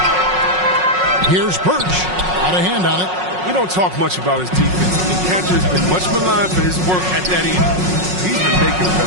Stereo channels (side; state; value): left; late; 5.5 ms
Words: Here's Birch. Out of hand on it. We don't talk much about his defense. And Kanter has been much maligned for his work at that end. He's been making